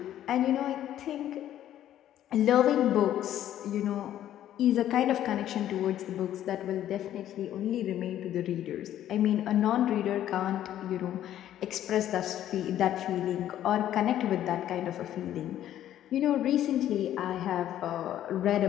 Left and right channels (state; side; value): quieter; right; 11.8 dB